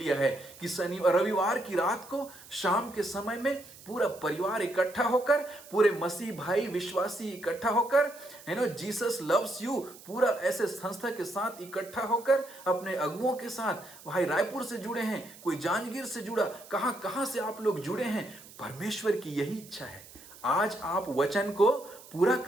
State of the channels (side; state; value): right; noise; hiss, 20 dB below the sound